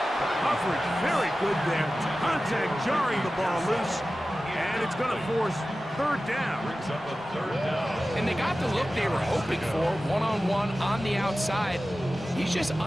Coverage very good there. Contact jarring the ball loose. And it's going to force 3rd down. Brings up a 3rd down. And they got the look they were hoping for, one-on-one on the outside. He's just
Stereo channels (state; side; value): normal; both; correlation 0.95